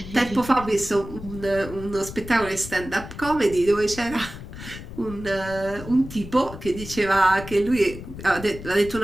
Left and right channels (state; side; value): noise; left; rumble, 12 dB below the sound